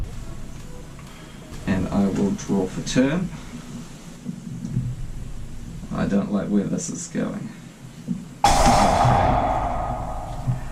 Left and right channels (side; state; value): both; identical; correlation 1.00